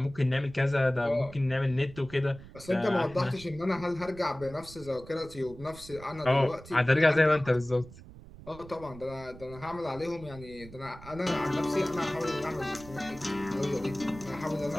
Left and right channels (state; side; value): noise; right; rumble, 17 dB below the sound